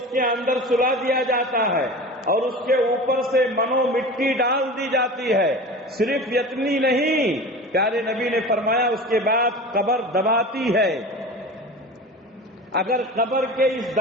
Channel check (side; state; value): both; normal; correlation 0.33